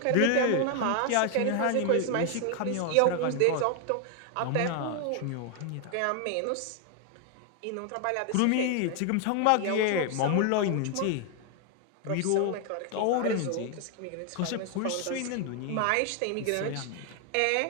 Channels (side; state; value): both; different; correlation 0.00